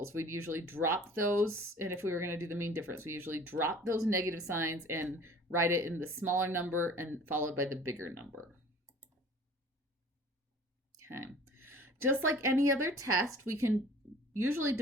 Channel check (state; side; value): normal; both; correlation 0.47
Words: We'd usually drop those, and if we were going to do the mean difference, we usually drop those negative signs and write it in the smaller number and followed by the bigger number. Okay. Just like any other test, we can usually